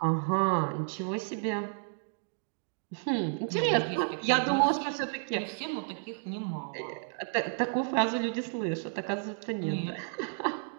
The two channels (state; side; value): silent; left; digital silence